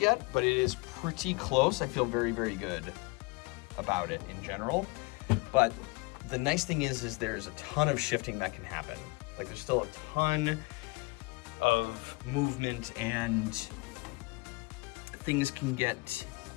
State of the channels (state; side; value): quieter; right; 26.4 dB